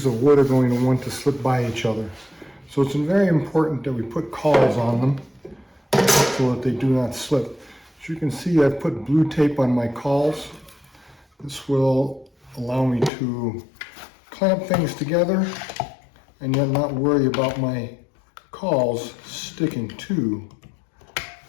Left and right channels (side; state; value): right; drops out; at 13.1 s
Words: of wood are going to want to slip by each other. So it's very important that we put cawls on them so that they do not slip. As you can see, I've put blue tape on my cawls. This will allow me to clamp things together and yet not worry about my cawls sticking to